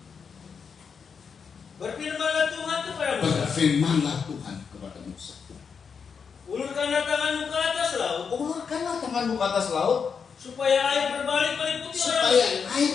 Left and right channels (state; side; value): quieter; right; 6.1 dB